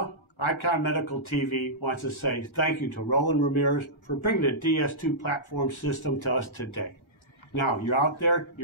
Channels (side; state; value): right; late; 1.4 ms